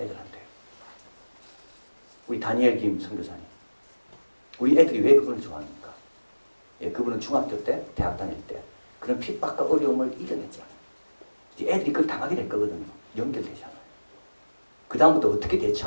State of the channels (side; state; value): both; inverted; correlation -1.00